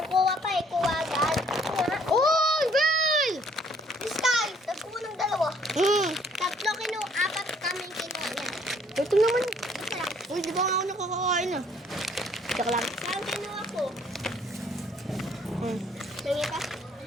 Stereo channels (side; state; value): both; normal; correlation 0.62